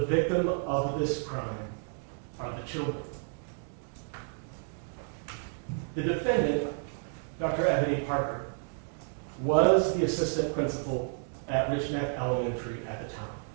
of this crime are the children. The defendant, Dr. Ebony Parker, was the assistant principal at Richneck Elementary at the time.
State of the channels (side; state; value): left; silent; 57 dB below the other